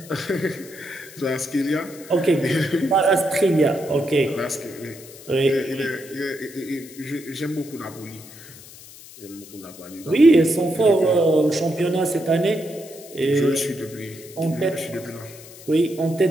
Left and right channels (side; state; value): left; noise; hiss, 18 dB below the sound